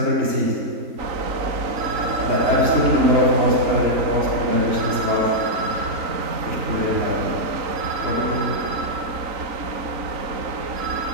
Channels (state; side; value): late; left; 3.9 ms